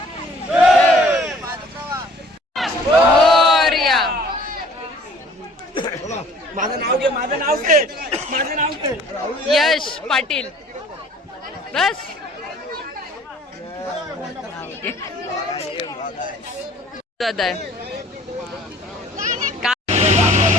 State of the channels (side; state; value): both; normal; correlation 0.54